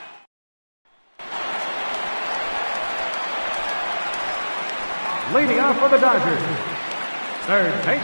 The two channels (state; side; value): inverted; both; correlation -1.00